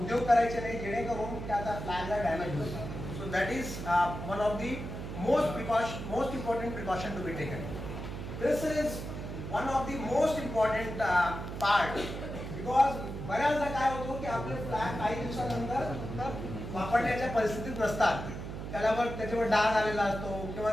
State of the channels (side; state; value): right; noise; hum, 7 dB below the sound